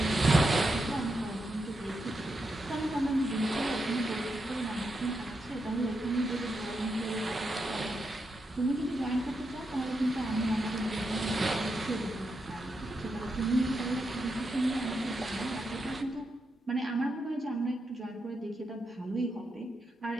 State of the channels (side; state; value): both; normal; correlation 0.85